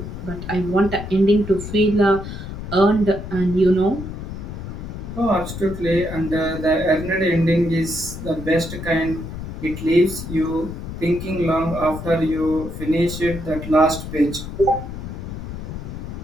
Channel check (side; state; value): left; noise; rumble, 8 dB below the sound